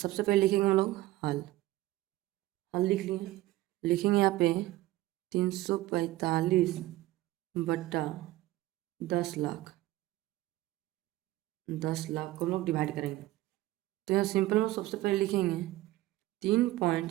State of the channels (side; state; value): left; quieter; 16.9 dB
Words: पहले लिखेंगे हम लोग हल लिख लिए, लिखेंगे यहाँ पे 345 बट्टा 10 लाख को हम लोग डिवाइड करेंगे। तो यहाँ सिंपल में सबसे पहले लिखेंगे